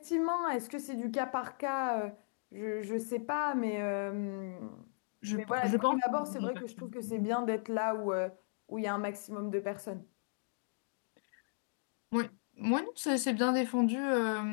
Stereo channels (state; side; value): silent; right; digital silence